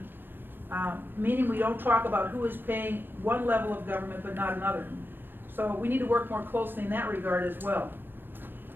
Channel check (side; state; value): left; late; 0.098 ms